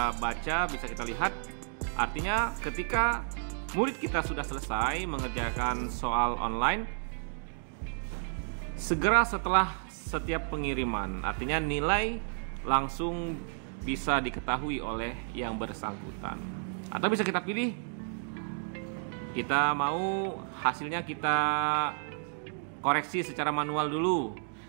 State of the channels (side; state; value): left; silent; 57 dB below the other